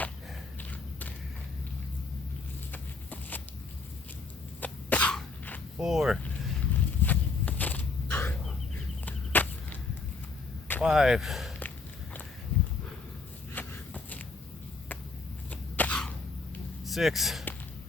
4. 5. 6.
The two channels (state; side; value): quieter; right; 4.0 dB